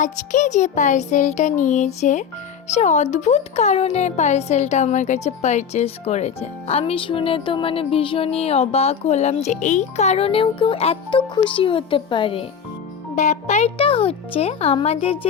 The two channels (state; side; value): quieter; right; 7.2 dB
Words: যে পার্সেলটা নিয়েছে সে অদ্ভুত কারণে পার্সেলটা আমার কাছে পারচেস করেছে। আমি শুনে তো ভীষণই অবাক হলাম যে এই কারণেও কেউ এত খুশি হতে পারে। ব্যাপারটা হচ্ছে, আমাদের